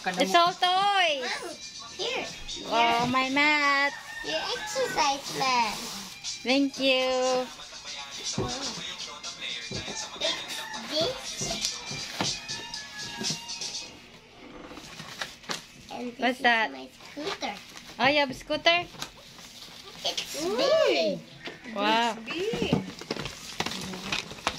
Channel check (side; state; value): both; identical; correlation 1.00